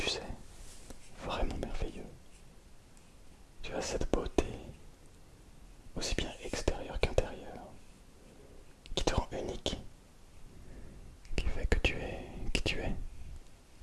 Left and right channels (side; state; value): both; identical; correlation 1.00